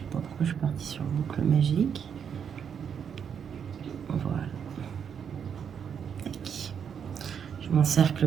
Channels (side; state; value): left; quieter; 7.6 dB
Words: pas pourquoi je suis partie sur boucle magique. Voilà. J'ai mon cercle